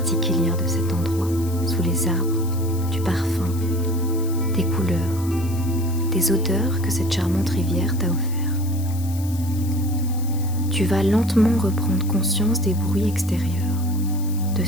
de cet endroit, sous les arbres, du parfum, des couleurs, des odeurs que cette charmante rivière t'a offert. Tu vas lentement reprendre conscience des bruits extérieurs, de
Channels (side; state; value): left; noise; hiss, 16 dB below the sound